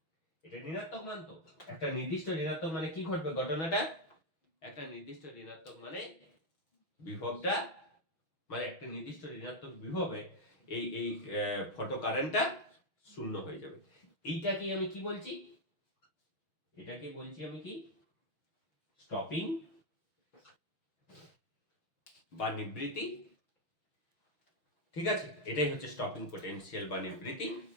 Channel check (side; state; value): right; late; 6.4 ms